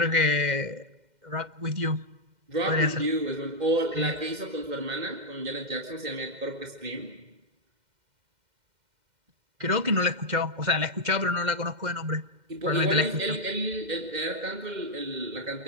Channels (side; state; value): left; late; 2.1 ms